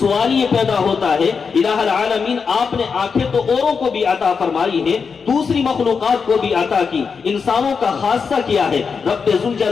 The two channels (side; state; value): right; quieter; 5.6 dB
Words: یہ پیدا ہوتا ہے، الہ العالمین آپ نے آنکھیں تو اوروں کو بھی عطا فرمائی ہیں، دوسری مخلوقات کو بھی عطا کی، انسانوں کا خاصہ کیا ہے؟ رب